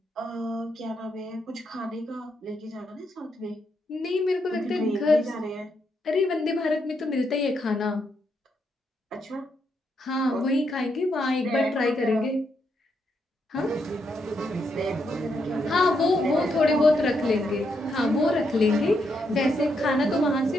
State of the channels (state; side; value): normal; both; correlation 0.79